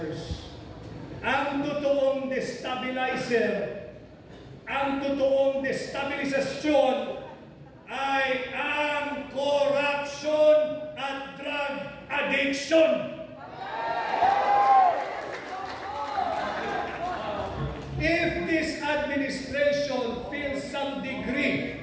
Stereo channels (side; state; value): both; identical; correlation 1.00